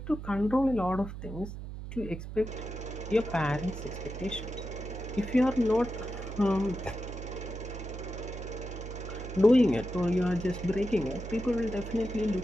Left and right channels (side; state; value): right; noise; hum, 9 dB below the sound